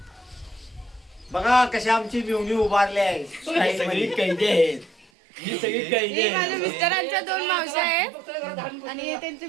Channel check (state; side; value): drops out; left; at 5.1 s